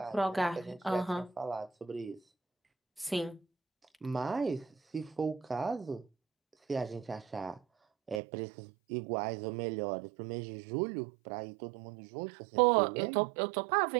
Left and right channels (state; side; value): drops out; left; at 8.2 s